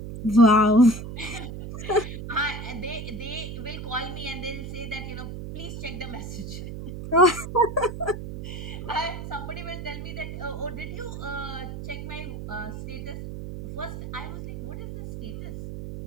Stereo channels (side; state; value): right; noise; hum, 8 dB below the sound